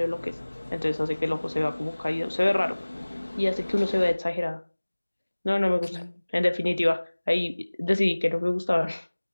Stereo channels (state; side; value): inverted; both; correlation -1.00